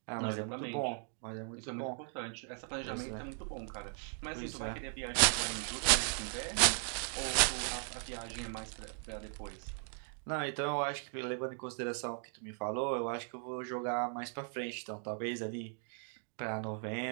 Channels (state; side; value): silent; left; 53 dB below the other